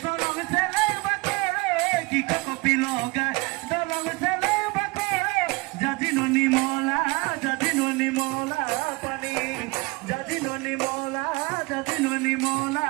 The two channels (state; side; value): quieter; left; 24.8 dB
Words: দলং ছেলে বাকরে কি কপি লগায় দলং ছেলে বাকরে জাজিনো নিমলা পানি জাজিনো নিমলা